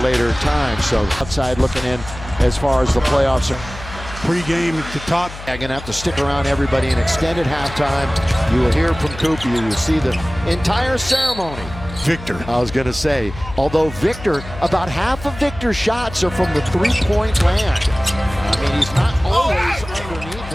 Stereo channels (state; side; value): noise; left; hum, 13 dB below the sound